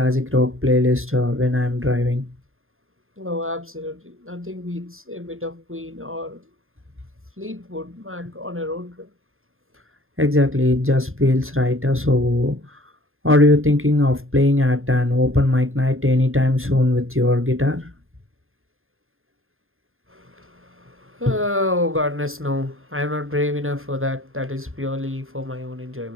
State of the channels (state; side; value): late; left; 0.60 ms